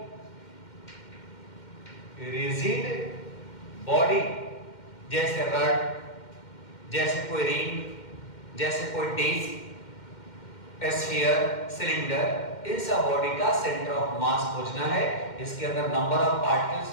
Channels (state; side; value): late; right; 2.1 ms